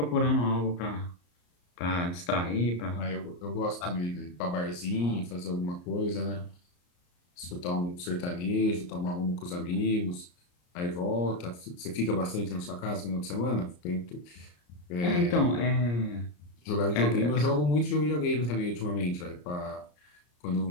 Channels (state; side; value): late; right; 34 ms